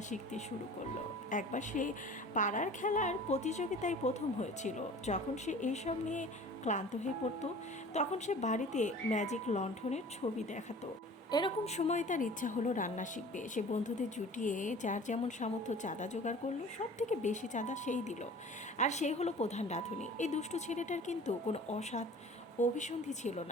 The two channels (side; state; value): both; normal; correlation 0.43